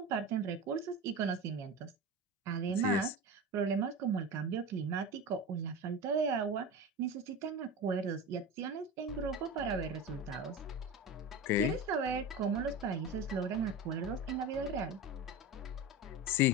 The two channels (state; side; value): normal; both; correlation 0.27